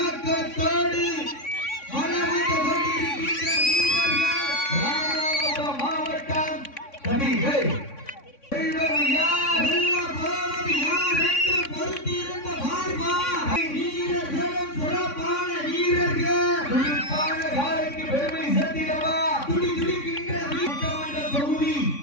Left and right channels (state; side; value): late; right; 3.6 ms